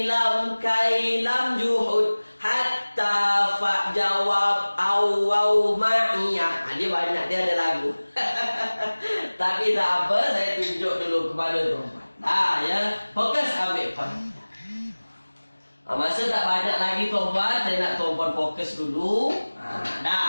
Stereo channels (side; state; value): both; inverted; correlation -1.00